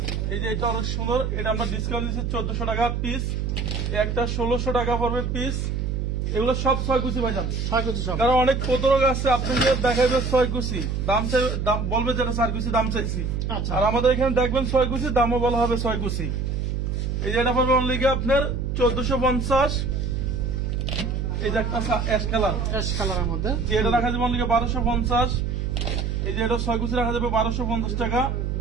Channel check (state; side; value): noise; right; hum, 1 dB below the sound